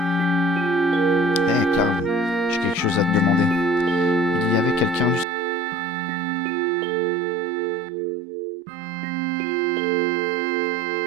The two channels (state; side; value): drops out; left; at 5.2 s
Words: soldat parmi nos adversaires? Personne, j'en suis sûr.